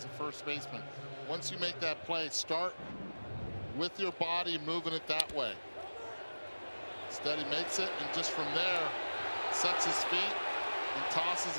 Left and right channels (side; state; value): both; inverted; correlation -1.00